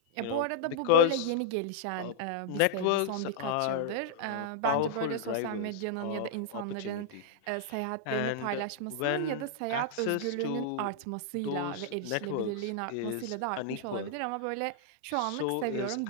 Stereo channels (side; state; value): both; different; correlation -0.01